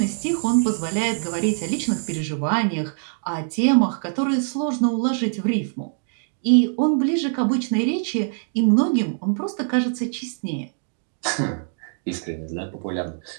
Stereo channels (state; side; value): silent; left; digital silence